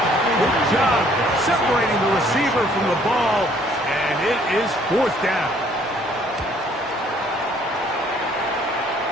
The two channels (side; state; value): both; normal; correlation 0.61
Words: Good job separating the receiver from the ball. And it is fourth down.